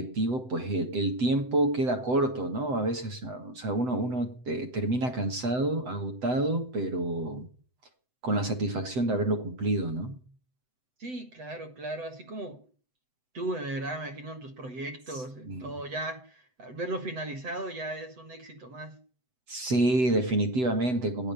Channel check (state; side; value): late; left; 7.9 ms